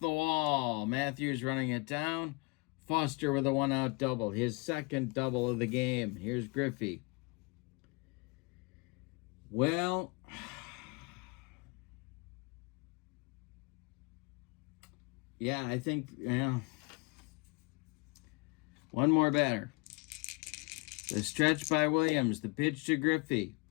wall. Matthews running it down. Foster with a 1-out double. His second double of the game. Here's Griffey. Well, yeah, I think, one more batter. The stretch by Williams. The pitch to Griffey.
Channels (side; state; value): right; quieter; 28.5 dB